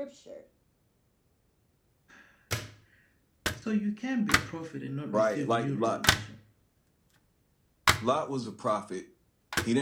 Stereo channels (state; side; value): identical; both; correlation 1.00